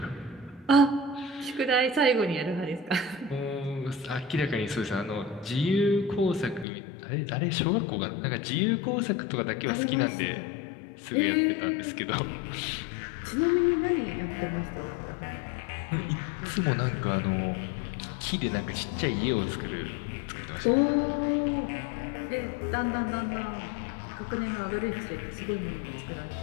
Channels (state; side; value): drops out; right; at 6.7 s